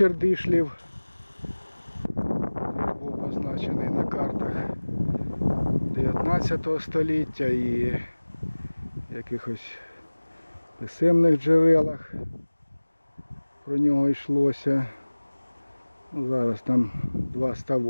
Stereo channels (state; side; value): inverted; both; correlation -1.00